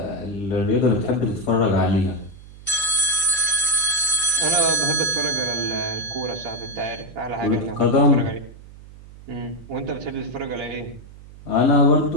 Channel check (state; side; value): noise; right; hum, 19 dB below the sound